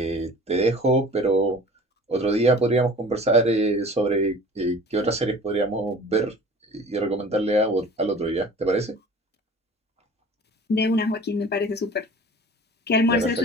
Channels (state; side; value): normal; both; correlation 0.43